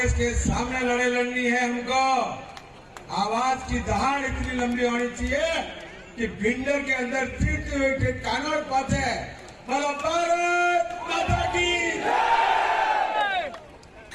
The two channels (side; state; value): both; identical; correlation 1.00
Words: के सामने लड़नी है हमको। आवाज की दहाड़ इतनी लंबी होनी चाहिए कि भिंडर के अंदर फिरते हुए कानों पाते। बोलो भारत माता की।